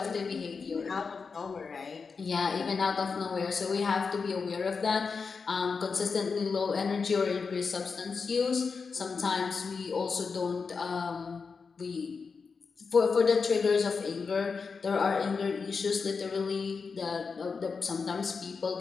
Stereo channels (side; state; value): right; quieter; 5.1 dB